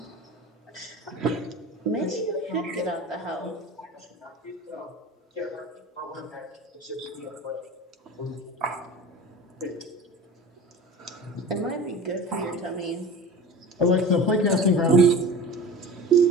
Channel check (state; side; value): normal; both; correlation 0.36